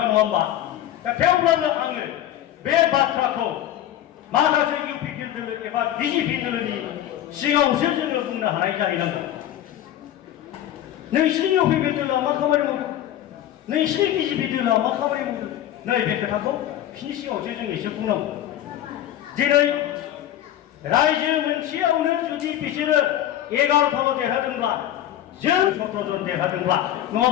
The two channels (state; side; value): quieter; right; 12.2 dB